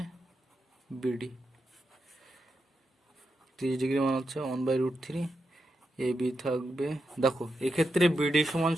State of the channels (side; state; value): both; normal; correlation 0.86